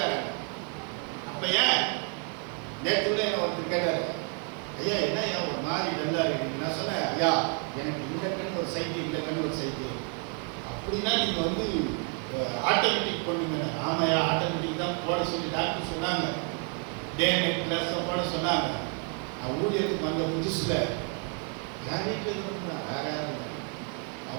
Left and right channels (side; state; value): left; quieter; 39.5 dB